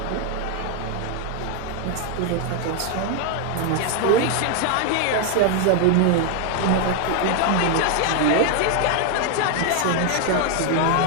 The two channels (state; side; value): different; both; correlation 0.00